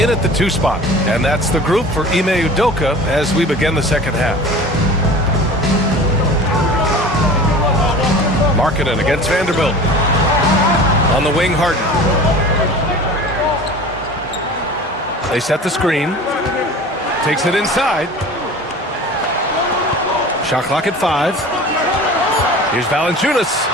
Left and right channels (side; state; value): both; normal; correlation 0.39